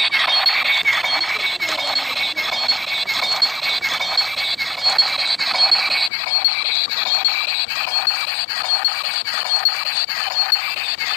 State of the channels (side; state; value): right; drops out; at 6.1 s